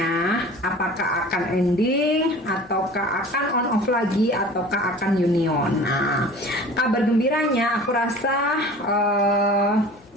Apakah akan ending, ataukah akan on off lagi, ataukah akan union? Nah, kabar gembiranya aku rasa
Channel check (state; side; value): normal; both; correlation 0.42